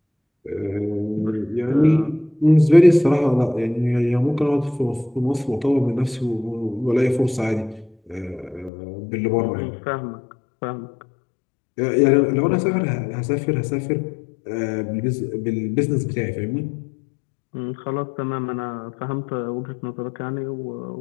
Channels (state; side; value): drops out; right; at 8.7 s